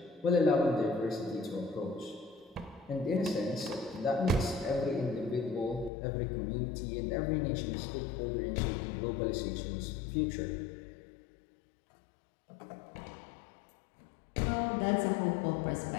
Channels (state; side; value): drops out; right; at 5.9 s